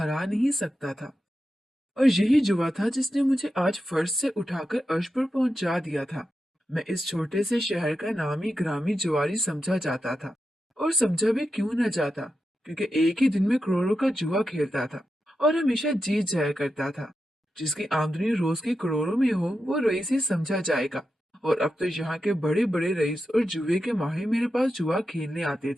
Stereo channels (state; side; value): normal; both; correlation 0.89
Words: नहीं सकता था। और यही जुआ था जिसने मुझे आज फर्श से उठाकर अर्श पर पहुंचा दिया था। मैं इस छोटे से शहर का नामी ग्रामी जुआरी समझा जाता था। और समझा भी क्यों न जाता, क्योंकि एक ही दिन में करोड़ों का जुआ खेलता था और हमेशा जीत जाया करता था। जिसकी आमदनी रोज के करोड़ों में हो वो रईस ही समझा जाएगा। और अब तो यहाँ के बड़े बड़े रईस और जुए के माहिर मेरे पास जुआ खेलने आते